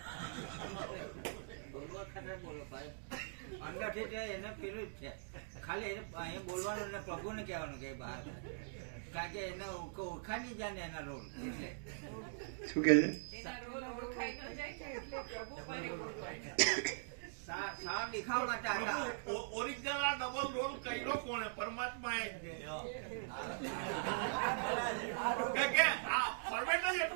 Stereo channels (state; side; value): silent; left; digital silence